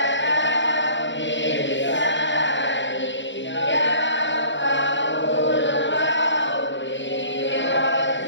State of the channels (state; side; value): late; right; 0.54 ms